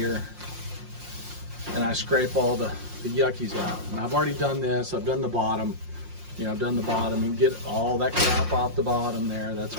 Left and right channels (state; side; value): late; left; 5.6 ms